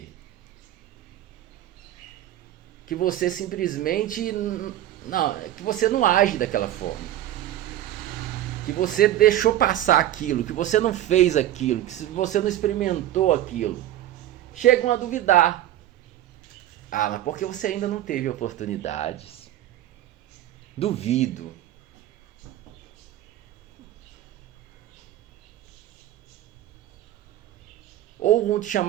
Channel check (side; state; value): left; quieter; 13.1 dB